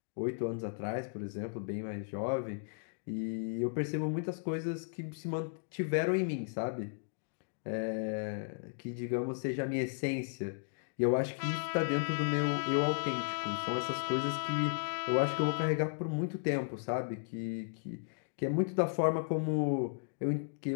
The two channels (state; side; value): silent; right; digital silence